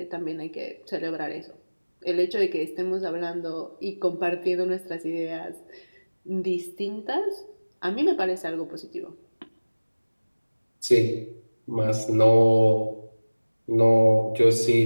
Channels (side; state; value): both; inverted; correlation -1.00